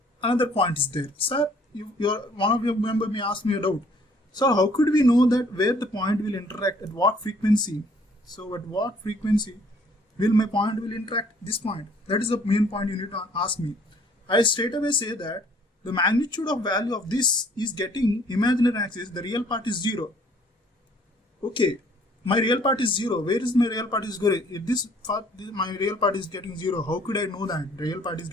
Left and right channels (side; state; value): both; normal; correlation 0.59